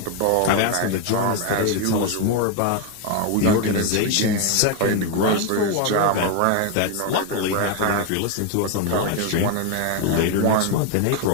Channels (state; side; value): different; both; correlation 0.01